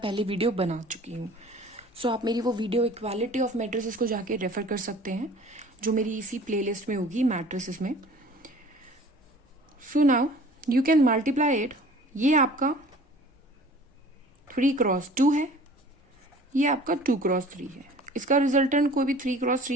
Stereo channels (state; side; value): normal; both; correlation 0.47